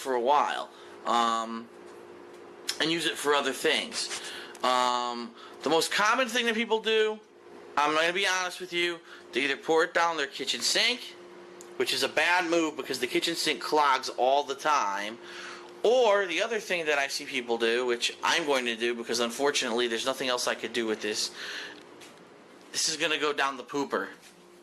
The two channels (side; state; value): both; identical; correlation 1.00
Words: a while. And use it for other things. The most common thing that people do, I'm going to be honest with you, they either pour it down their kitchen sink, which is a bad move because the kitchen sink clogs all the time, or the other thing that I see people do, which I'm going to do because unfortunately there's nothing else I could do with this, this is going to go down the pooper.